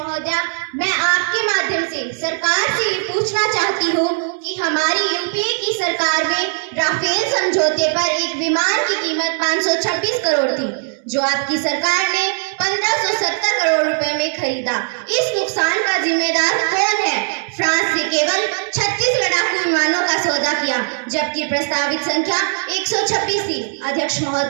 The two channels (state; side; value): silent; left; 67 dB below the other